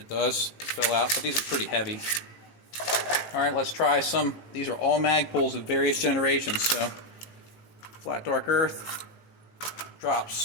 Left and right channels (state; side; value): late; right; 19 ms